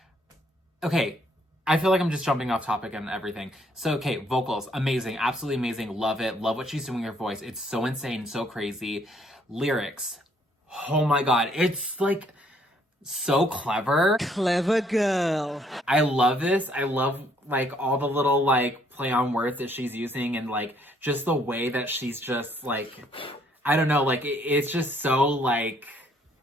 Okay, I feel like I'm just jumping off topic and everything. So, okay, vocals, amazing. Absolutely amazing. Love it. Love what she's doing with her voice. It's so insane, so crazy. Lyrics. Oh my God. It's, like, so clever. Clever girl. I love this. I love, like, all the little, like, play on words that she's using and, like, just the way that she's just, like, I don't know, like, it's just so, like,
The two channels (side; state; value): both; normal; correlation 0.66